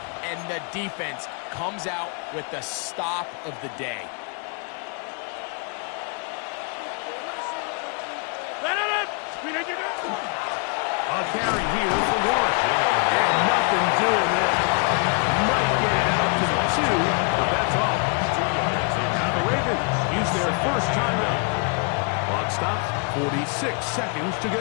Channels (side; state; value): right; quieter; 37.5 dB